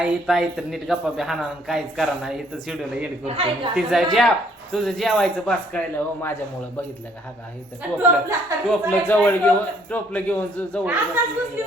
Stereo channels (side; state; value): both; normal; correlation 0.64